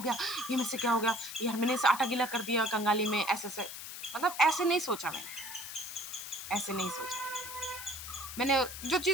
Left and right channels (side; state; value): left; noise; hiss, 9 dB below the sound